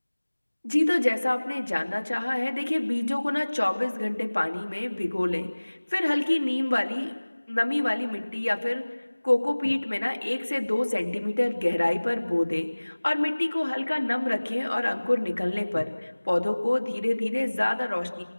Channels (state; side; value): inverted; both; correlation -1.00